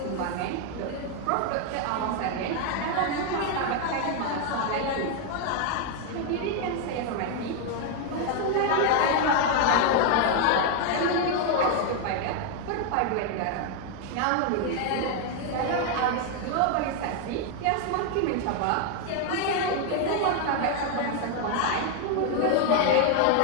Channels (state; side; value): different; both; correlation 0.00